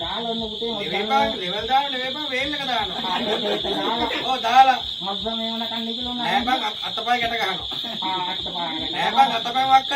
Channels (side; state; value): both; identical; correlation 1.00